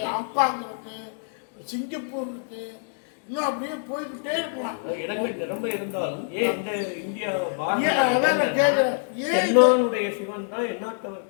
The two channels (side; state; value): right; silent; digital silence